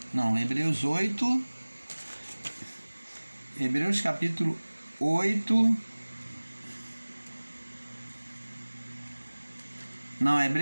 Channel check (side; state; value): both; inverted; correlation -1.00